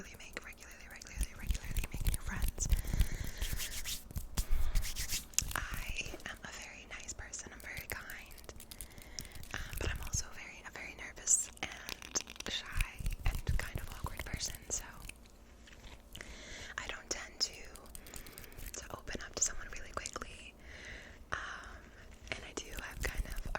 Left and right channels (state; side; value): identical; both; correlation 1.00